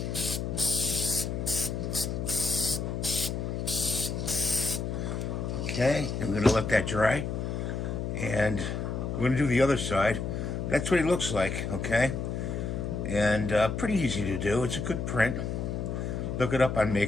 Okay, and we're gonna let that dry. And we're gonna do the other side. That's what he looks like, okay? And pretty easy to do. It's a good print. Look it up on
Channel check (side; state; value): left; noise; hum, 3 dB below the sound